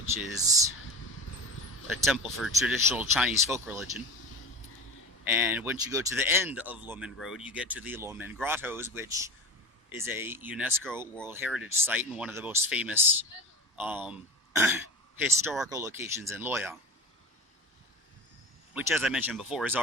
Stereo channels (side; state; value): both; normal; correlation 0.32